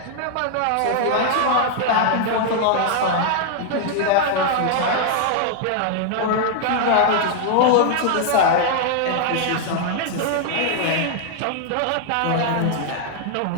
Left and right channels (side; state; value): both; different; correlation 0.00